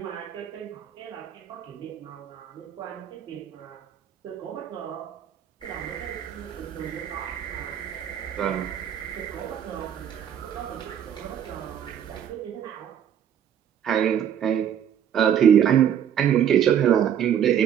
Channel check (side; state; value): left; quieter; 9.3 dB